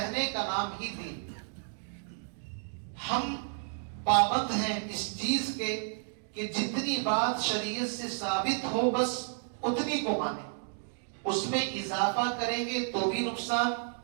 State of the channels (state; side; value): silent; left; digital silence